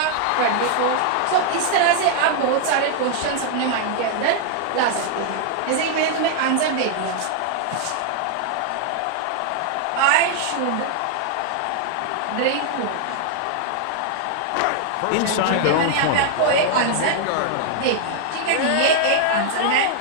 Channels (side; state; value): both; different; correlation 0.00